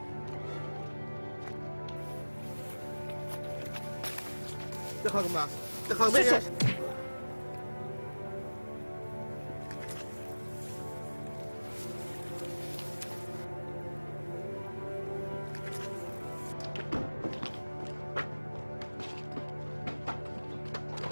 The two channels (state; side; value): inverted; both; correlation -1.00